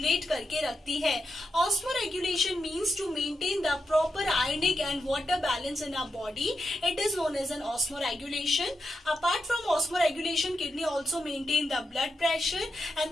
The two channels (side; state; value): both; normal; correlation 0.86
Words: करके रखती है। Osmo regulation means to maintain the proper ionic and water balance in our body. It is known as an osmoregulation. Apart from osmoregulation, kidney also maintain the blood pressure,